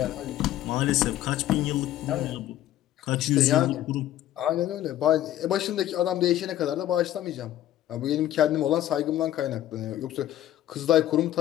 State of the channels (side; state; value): right; quieter; 13.0 dB